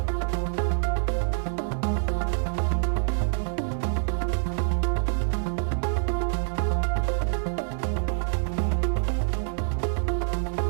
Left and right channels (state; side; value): silent; left; 61 dB below the other